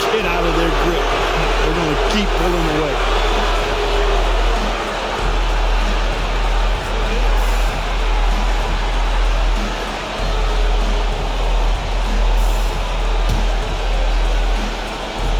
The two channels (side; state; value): both; identical; correlation 1.00